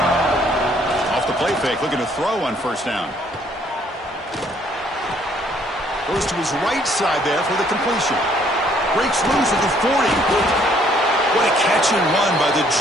Play fake, looking to throw on first down. Goes to his right side there for the completion. Breaks loose at the 40. What a catch and run by the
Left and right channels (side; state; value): both; normal; correlation 0.64